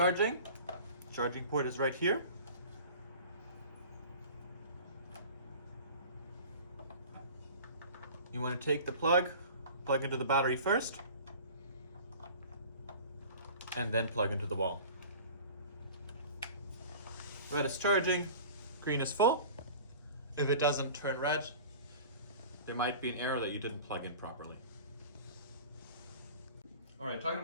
charging port is right here. You want to take the plug into the battery first, and then plug into the wall. Red is charging, green is full. If it doesn't turn red, there might be an error that you didn't plug in properly. All right, talking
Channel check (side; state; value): both; inverted; correlation -0.41